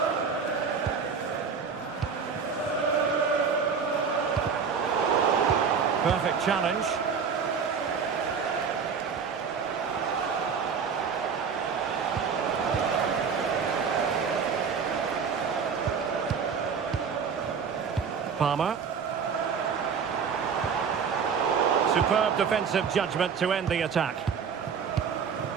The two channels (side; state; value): left; quieter; 6.2 dB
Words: Perfect challenge. Palmer. Superb defensive judgment to end the attack.